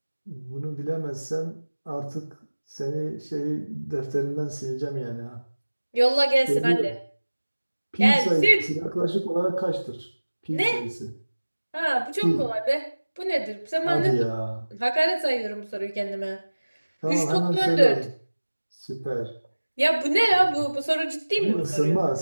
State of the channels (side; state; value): both; inverted; correlation -1.00